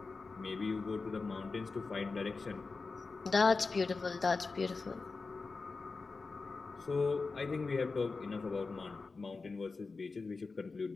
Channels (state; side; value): quieter; right; 4.1 dB